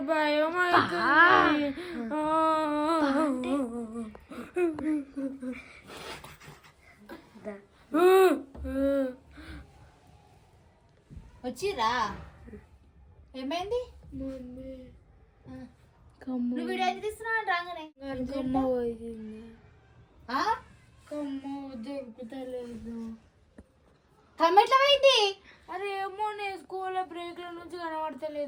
భయం అవుతుంది. వచ్చిరా ఏమైంది? నువ్వు వీడియో అయితే తీస్తున్నావు రాగానే కమ్మ పోయింది. కమ్మ దొరుకుతలేదు. కమ్మ ఎట్లా పోయింది? అరే ఏమో నేను స్కూల్లో బ్రేక్ల నుంచి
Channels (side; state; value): both; identical; correlation 1.00